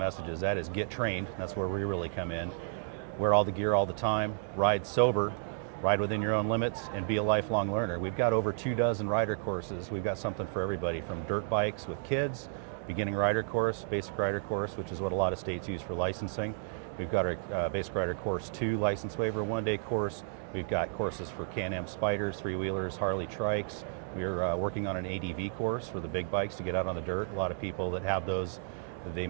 That is get trained, that's where we really come in. Wear all the gear all the time, ride sober, ride within your own limits, and be a lifelong learner. We've got over 24 rider courses. We've got something for everybody, from dirt bikes with kids, beginning rider course, basic rider course, which is what a lot of states use for licensing. We've got our basic rider course 2 license waiver 1-day course. We've got courses for Can-Am Spyders, 3-wheelers, Harley trikes. We're working on an ADV course for the big bikes to get out on the dirt. A lot of people that have those, they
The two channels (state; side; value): silent; left; digital silence